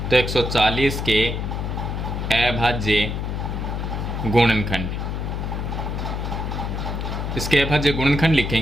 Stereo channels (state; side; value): noise; left; hum, 3 dB below the sound